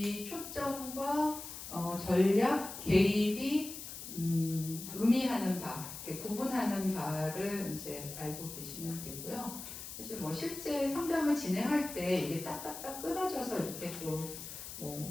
초점과 전략, 개입이 의미하는 바, 구분하는 바를 이제 알고 계시면 되고요. 사실 뭐 실제 상담을 진행할 때 이게 딱딱딱 끊어져서 이렇게 또 뭐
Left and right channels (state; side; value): noise; left; hiss, 10 dB below the sound